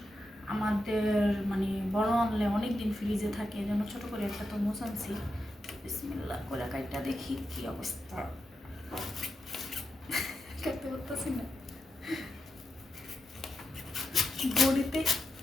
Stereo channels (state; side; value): normal; both; correlation 0.87